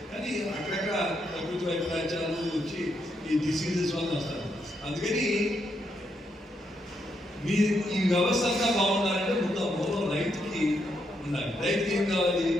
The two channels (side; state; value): both; normal; correlation 0.79